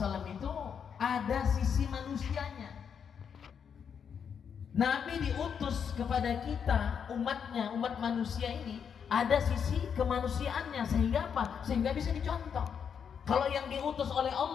itu ada sisi manusianya. Nabi diutus kepada kita, umatnya, umat manusia ini ada sisi kemanusiaannya, sehingga apa? Sehingga bisa dicontoh. Kalau yang diutus oleh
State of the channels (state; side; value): quieter; right; 7.3 dB